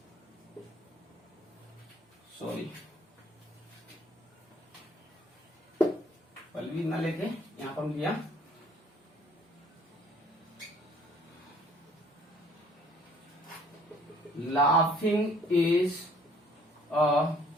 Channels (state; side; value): normal; both; correlation 0.58